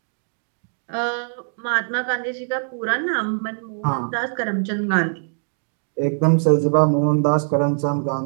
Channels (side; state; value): left; silent; digital silence